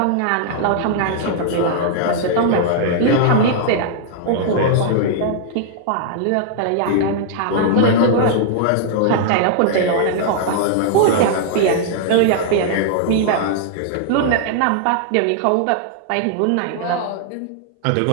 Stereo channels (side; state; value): both; different; correlation -0.01